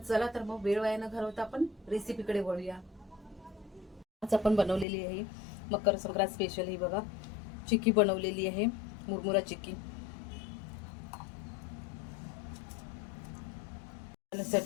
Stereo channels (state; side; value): drops out; right; at 4.9 s